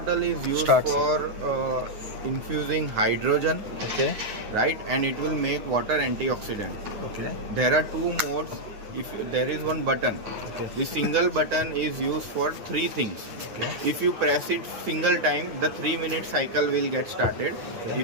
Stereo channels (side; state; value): left; late; 9.4 ms